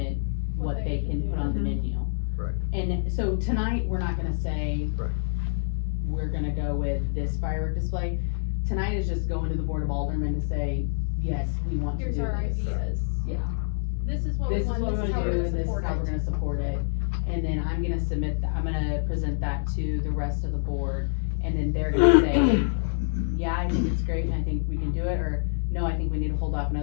what they can put on the menu. Right. And so tonight, we're not gonna say. Right. We're gonna go with this firework display. Tonight is just going to the Board of Aldermen to say, yes, we want to do Here's this. our ideas. Yeah. This is what we This is want, what this we're is how gonna we're do, gonna and this is support how we're it. gonna support it. And then I'm gonna I'm gonna present that to the rest of the board, and then they're gonna say, yeah, I think it's great, and I think we can do it, or no, I think we need to hold off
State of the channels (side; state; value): right; silent; digital silence